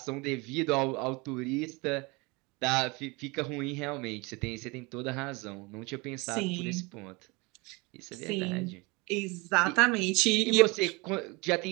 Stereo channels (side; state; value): left; quieter; 26.5 dB